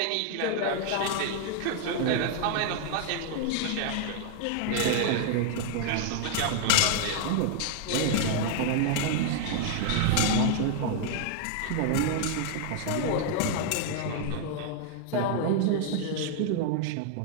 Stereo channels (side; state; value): both; different; correlation 0.00